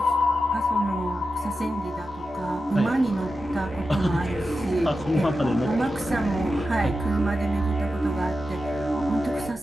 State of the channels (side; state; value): both; normal; correlation 0.91